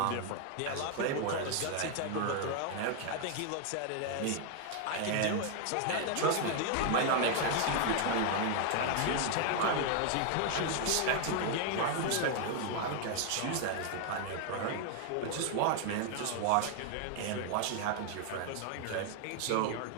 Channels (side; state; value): both; different; correlation 0.00